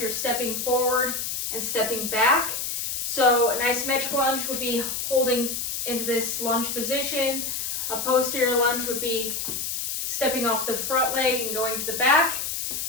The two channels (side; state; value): left; noise; hiss, 3 dB below the sound